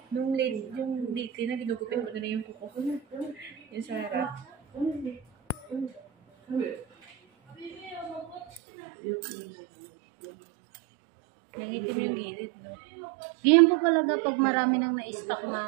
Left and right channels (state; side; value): drops out; left; at 8.6 s